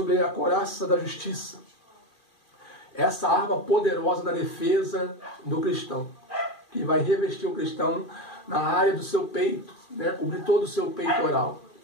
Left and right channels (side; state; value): right; late; 2.4 ms